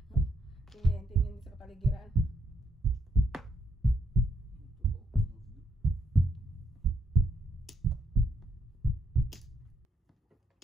Tingin din sa paligiran.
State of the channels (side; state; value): both; normal; correlation 0.77